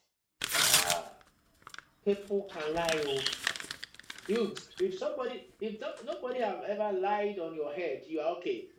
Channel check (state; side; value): identical; both; correlation 1.00